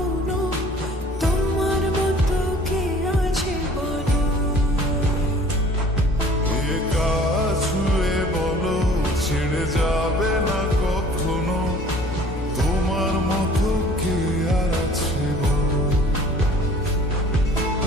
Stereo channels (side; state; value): both; normal; correlation 0.51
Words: তোমার মতো কে আছে বলো। এই গান শুনে বলো ছেড়ে যাবে না কখনো, তোমার মতো কে আর আছে বলো।